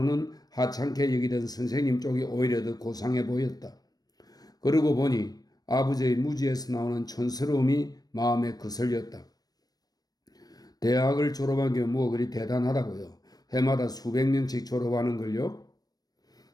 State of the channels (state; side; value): late; right; 0.19 ms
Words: 하찮게 여기던 선생님 쪽이 오히려 더 고상해 보였다. 그러고 보니 아버지의 무지에서 나오는 촌스러움이 마음에 거슬렸다. 대학을 졸업한 게 뭐 그리 대단하다고요. 해마다 수백 명씩 졸업하는 걸요.